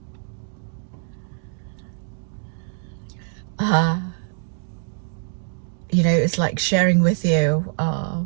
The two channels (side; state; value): left; silent; digital silence